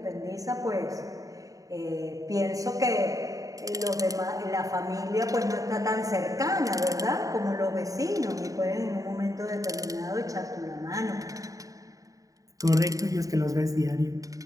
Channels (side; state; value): left; late; 0.16 ms